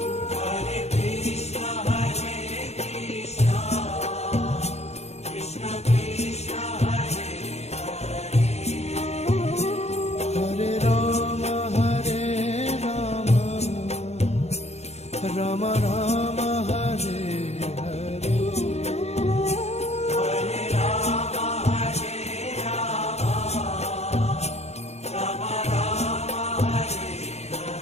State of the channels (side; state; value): right; late; 0.31 ms